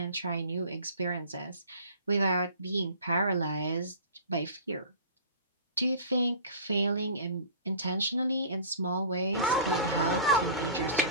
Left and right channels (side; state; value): both; inverted; correlation -0.41